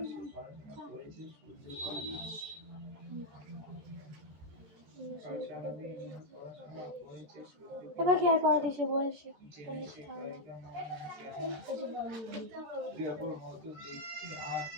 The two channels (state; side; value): late; left; 13 ms